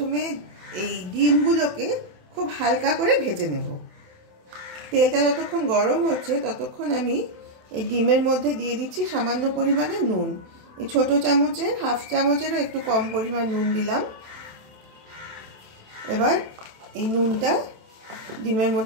এই ডিমগুলোকে খুব হালকা করে ভেজে নেব। তেলটা যতক্ষণ গরম হচ্ছে ততক্ষণ আমি এই ডিমের মধ্যে দিয়ে দিচ্ছি সামান্য পরিমাণে নুন। এই ছোট চামচের হাফ চামচেরও একটু কম পরিমাণ নুন দিলাম। এবার এই নুনটা ডিমের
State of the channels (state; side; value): late; left; 27 ms